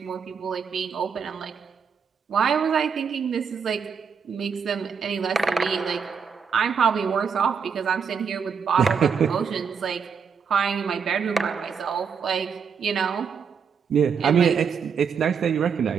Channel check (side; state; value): left; quieter; 6.5 dB